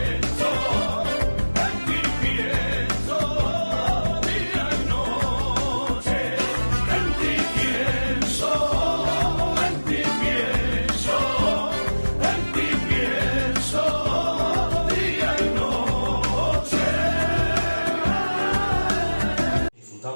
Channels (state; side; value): inverted; both; correlation -1.00